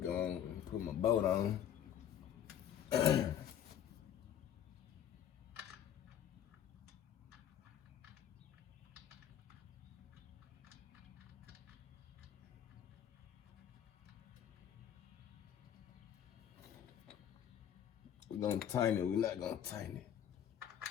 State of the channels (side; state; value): right; quieter; 9.8 dB